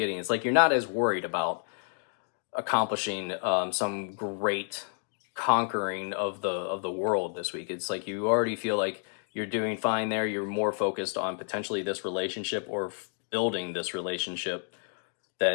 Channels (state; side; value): silent; right; digital silence